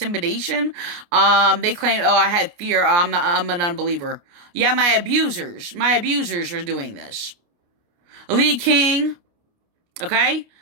they claimed, oh, I had fear. I'm an unbeliever. Yeah, my abusers are doing this. Lee King, okay,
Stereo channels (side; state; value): left; late; 29 ms